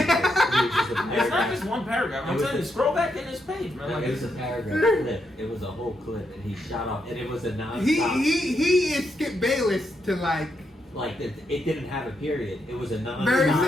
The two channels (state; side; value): normal; both; correlation 0.81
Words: not just one paragraph. I'm telling you, scroll back in this page, man. Like, it was a paragraph clip. It was a whole clip, and he shot off, and it was a non-stop. He is Skip Bayless to like it didn't have a period. It was a non-stop. Barry